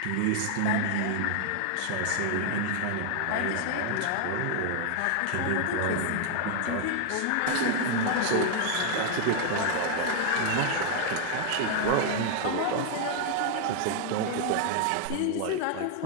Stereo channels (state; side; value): different; both; correlation 0.00